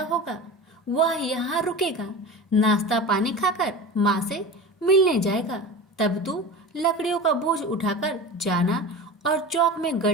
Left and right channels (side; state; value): both; normal; correlation 0.31